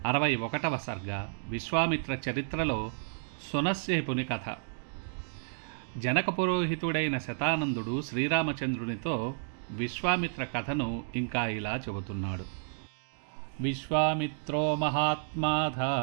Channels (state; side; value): silent; left; digital silence